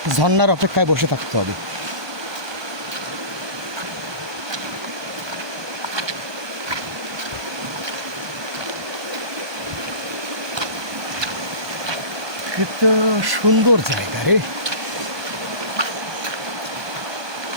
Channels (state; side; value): late; left; 1.2 ms